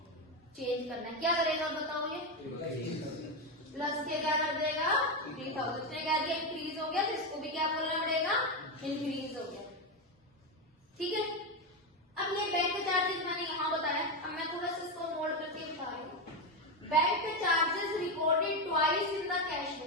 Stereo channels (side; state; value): both; normal; correlation 0.11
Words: चेंज करना है, क्या करेगा बताओ, ये प्लस के क्या कर देगा, 3000 ने कह दिया इंक्रीज हो गया, तो इसको भी क्या बोलना पड़ेगा, इंक्रीज हो गया। ठीक है, अब ये बैंक चार्जेस मैंने यहाँ बताया, अब मैं थोड़ा सा इसको नोट करके बता रही हूँ। Bank charges recorded twice in the cash